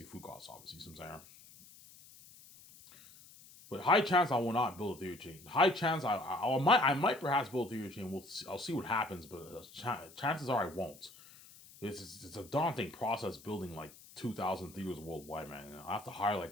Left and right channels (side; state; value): left; noise; hiss, 21 dB below the sound